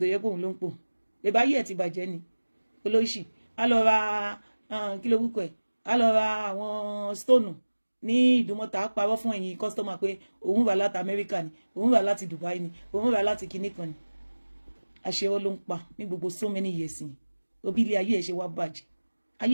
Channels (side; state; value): both; inverted; correlation -1.00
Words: yepo long po. E ba ye ti bàjẹ́ ni. Olóṣì. A lọ ra kí ló wúkọ ẹ̀. A lọ ra àwọn stone ní Ìdúmọ̀tà parọ́ fún ẹ̀yin customer pé òun wá láti America ni, òun wá láti Dubai ni, òun wá láti kíní kan ni. Àṣẹ ló ń pa ní gbogbo so many years ni. Obi ilé ayé ẹ̀ ṣe wá bàjẹ́.